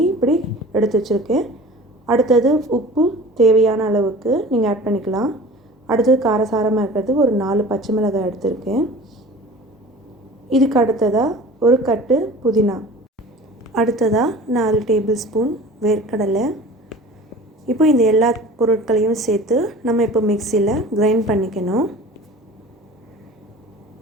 இப்படி எடுத்து வச்சுருக்கேன். அடுத்தது உப்பு தேவையான அளவுக்கு நீங்கள் ஆட் பண்ணிக்கலாம். அடுத்தது காரசாரமாக இருக்கிறது ஒரு 4 பச்சை மிளகாய் எடுத்திருக்கேன். இதுக்கு அடுத்ததாக ஒரு கட்டு புதினா, அடுத்ததாக 4 டேபிள் ஸ்பூன் வேர்க்கடலை. இப்போ இந்த எல்லா பொருட்களையும் சேர்த்து நம்ம இப்போ மிக்சியில் கிரைண்ட் பண்ணிக்கணும்.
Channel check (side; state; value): both; normal; correlation 0.41